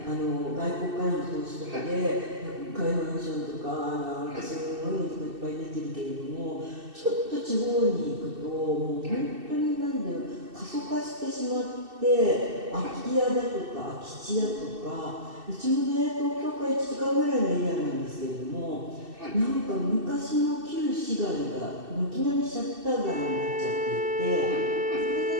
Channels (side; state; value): left; late; 2.6 ms